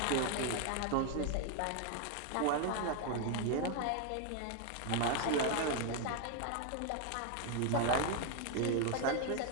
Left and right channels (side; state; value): both; different; correlation 0.01